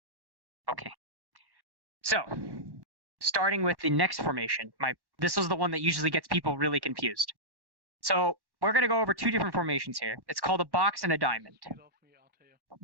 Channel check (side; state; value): left; late; 1.1 ms